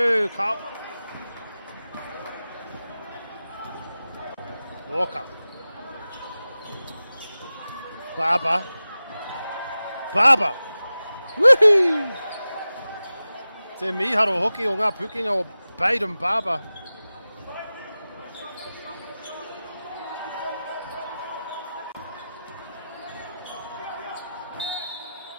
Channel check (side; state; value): both; inverted; correlation -0.95